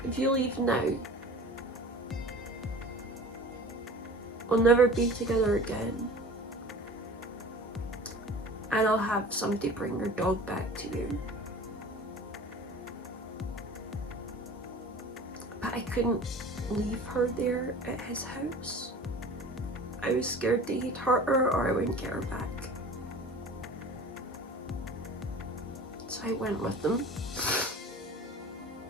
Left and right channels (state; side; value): normal; both; correlation 0.41